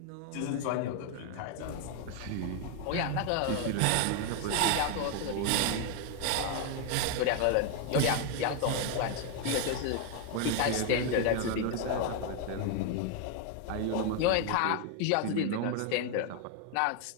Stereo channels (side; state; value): both; different; correlation 0.01